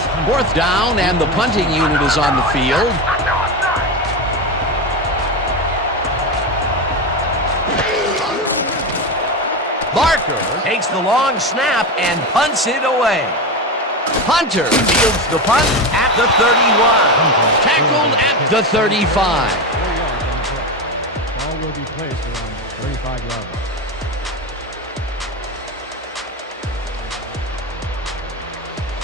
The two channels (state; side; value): normal; both; correlation 0.19